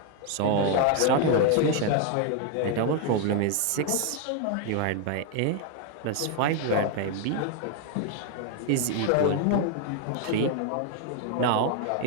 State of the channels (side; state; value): both; different; correlation 0.01